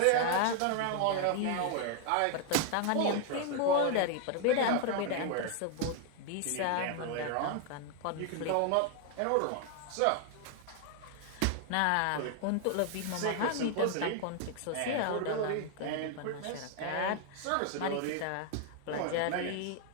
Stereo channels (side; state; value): both; different; correlation 0.00